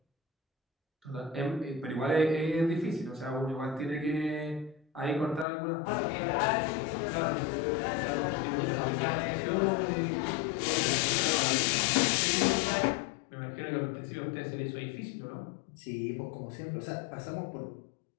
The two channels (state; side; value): drops out; right; at 5.5 s